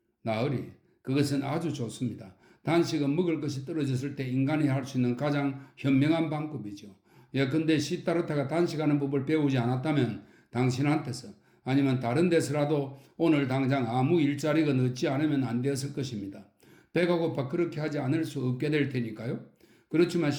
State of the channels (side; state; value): both; identical; correlation 1.00